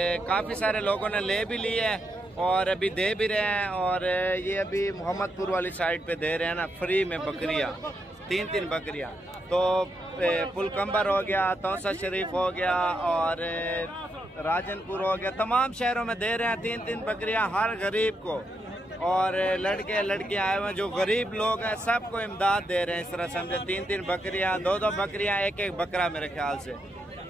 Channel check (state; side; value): normal; both; correlation 0.81